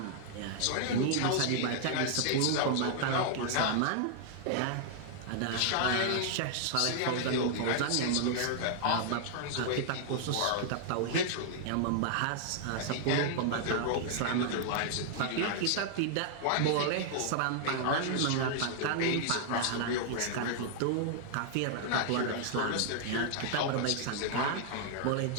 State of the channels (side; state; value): both; different; correlation 0.00